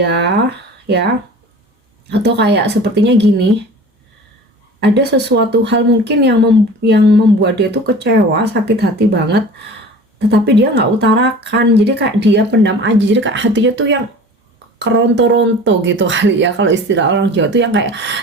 ya? Atau kayak sepertinya gini, ada sesuatu hal mungkin yang membuat dia tuh kecewa, sakit hati banget, tetapi dia nggak utarakan. Jadi kayak dia pendam aja. Jadi kayak hatinya tuh yang keronto-ronto gitu kali ya, kalau istilah orang Jawa tuh yang kayak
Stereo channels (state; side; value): normal; both; correlation 0.40